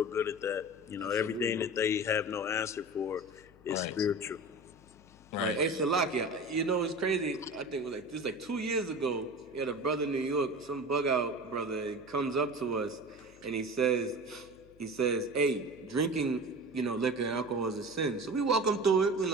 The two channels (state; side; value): noise; left; hum, 25 dB below the sound